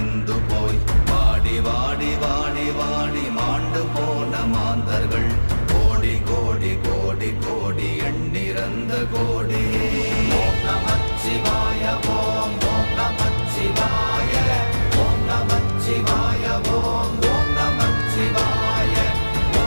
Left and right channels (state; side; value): inverted; both; correlation -1.00